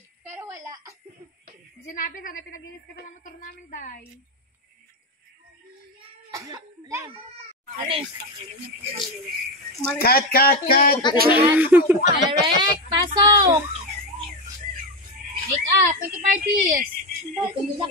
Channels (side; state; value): both; normal; correlation 0.14